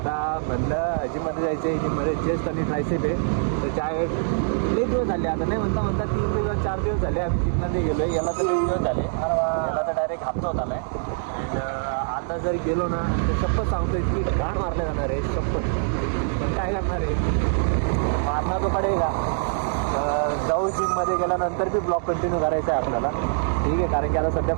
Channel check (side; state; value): left; silent; digital silence